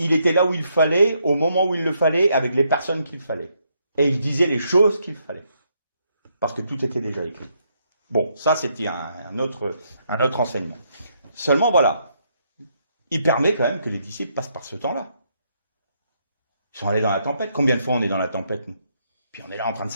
était là où il fallait, au moment où il le fallait, avec les personnes qu'il fallait. Et il disait les choses qu'il fallait. Parce que tout était déjà écrit. Bon, ça c'était un autre enseignement. Seulement voilà, il permet quand même que les disciples passent par ce temps-là. Ils sont allés dans la tempête. Combien de fois on est dans la tempête, nous? Puis on est là en train de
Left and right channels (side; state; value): both; inverted; correlation -0.75